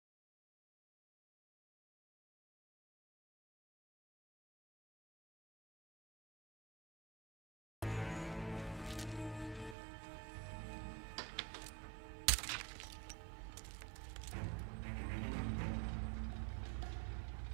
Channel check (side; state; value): left; drops out; at 9.8 s